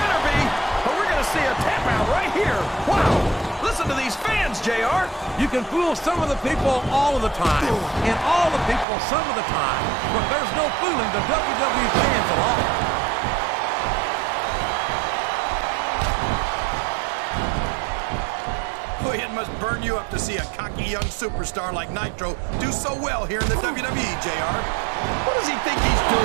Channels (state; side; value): drops out; left; at 8.8 s